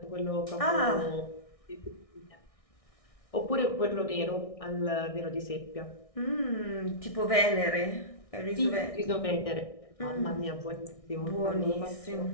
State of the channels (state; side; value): late; right; 1.6 ms